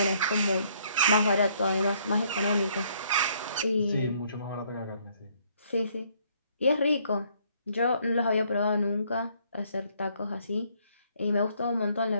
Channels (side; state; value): both; inverted; correlation -0.66